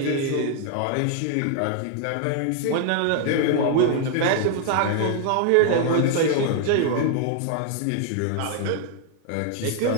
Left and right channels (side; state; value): both; different; correlation 0.00